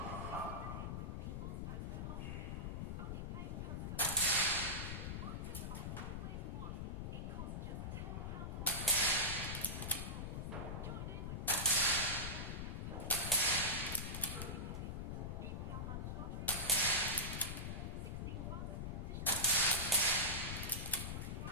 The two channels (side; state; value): left; noise; rumble, 3 dB below the sound